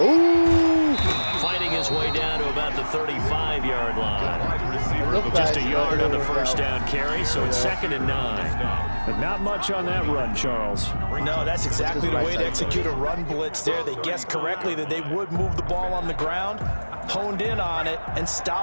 Ooh! Fighting his way down to about the 35-yard line. Wide receiver over the Just a yard on the first down carry, so it's 2nd and 9. But not much on that run, Charles. No, that's exactly the way to execute a run blitz there. They guessed correctly that they would move the ball on the ground, honed in on it, and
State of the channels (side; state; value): both; inverted; correlation -1.00